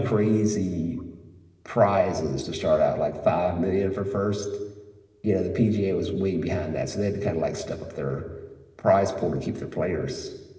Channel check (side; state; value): both; identical; correlation 1.00